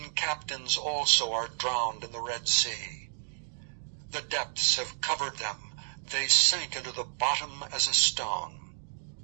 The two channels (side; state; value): left; silent; digital silence